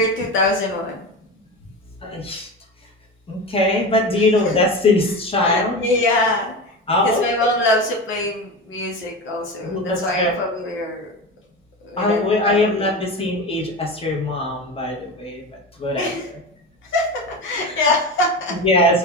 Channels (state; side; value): normal; both; correlation 0.25